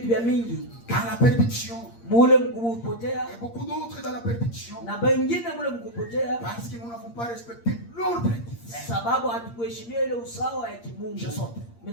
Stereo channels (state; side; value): late; right; 8.6 ms